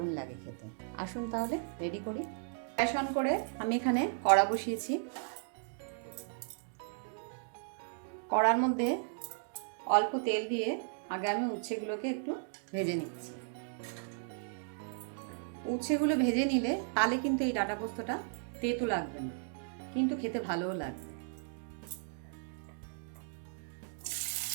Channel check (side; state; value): left; silent; digital silence